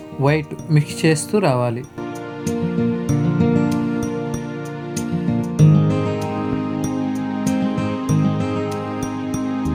white mix చేస్తూ రావాలి.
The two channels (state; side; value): identical; both; correlation 1.00